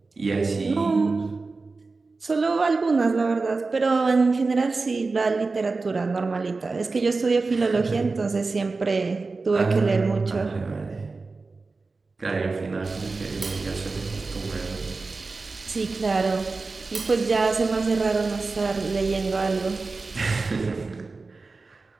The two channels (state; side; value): quieter; left; 3.9 dB